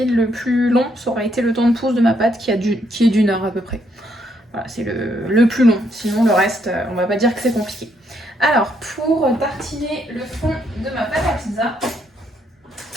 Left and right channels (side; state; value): both; normal; correlation 0.74